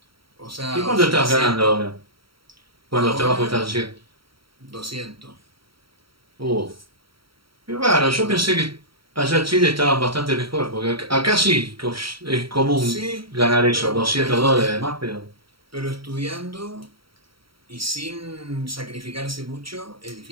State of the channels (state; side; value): late; left; 0.74 ms